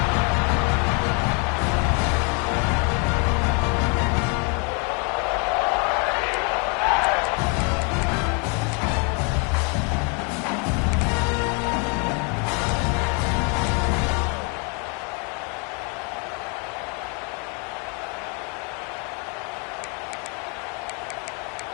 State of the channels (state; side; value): quieter; right; 35.5 dB